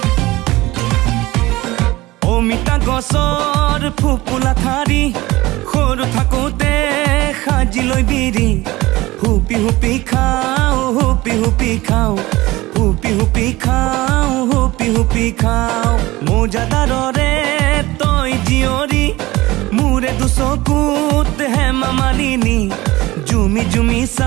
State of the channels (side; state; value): left; quieter; 19.2 dB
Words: অমিতা গছৰ ফুপুলা ঠাৰি সৰু থাকোঁতে সাজি লৈ বিৰি হুপি হুপি খাওঁ হুপি হুপি খাওঁ হুপি হুপি খাওঁ হুপি হুপি খাওঁ মোজাদাৰৰে তই জীয়ৰী মোৰে দুচকুত হেমা মালিনী জুমি জুমি